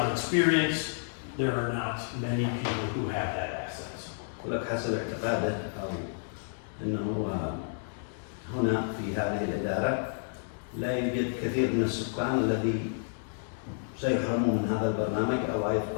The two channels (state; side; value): silent; right; digital silence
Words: experience, there are not many people who have that assets. ولك حسب اعتقاده أو أنه هنا في هذه الإدارة لا يوجد كثير من السكان الذي سيحرموا من هذا البرنامج أو